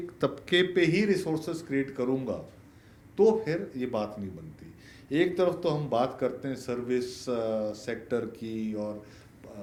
तबके पे ही रिसोर्सेस क्रिएट करूंगा, तो फिर ये बात नहीं बनती। एक तरफ तो हम बात करते हैं सर्विस सेक्टर की और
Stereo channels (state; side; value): identical; both; correlation 1.00